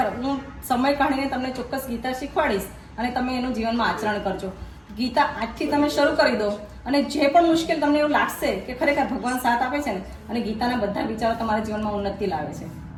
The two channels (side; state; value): both; identical; correlation 1.00